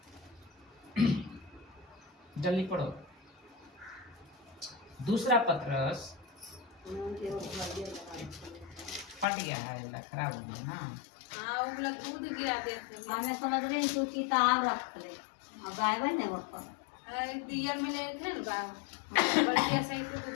जल्दी पढ़ो। दूसरा पत्रस फट गया है, खराब हो गया। हाँ, वो लोग दूध गिरा देते हैं। हमें समझ रहे हैं, तू किताब रख ले और गायबन है वो पर दिया में ले थे ना, बढ़िया सही से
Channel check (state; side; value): drops out; right; at 9.2 s